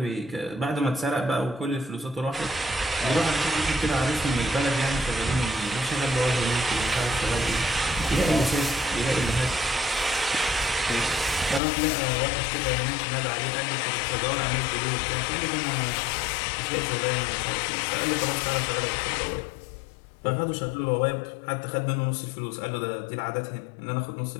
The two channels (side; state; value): right; drops out; at 11.6 s